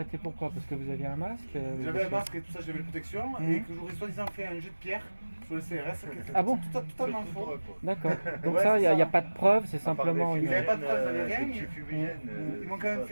pourquoi? Parce que vous aviez un masque J'avais un masque et tout ça, j'avais la protection. Et que j'aurais soi-disant fait un jet de pierre sur le CRS. Ah bon? Totalement faux. D'accord. Donc Ouais, ça, il c'est n'y a ça. pas de preuve, c'est simplement une... Ils avaient pas de preuve, ils avaient rien. Ils Ils m'ont quand même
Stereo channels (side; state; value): both; inverted; correlation -1.00